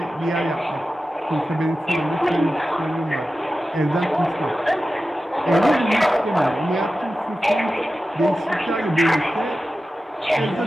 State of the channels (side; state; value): both; normal; correlation 0.93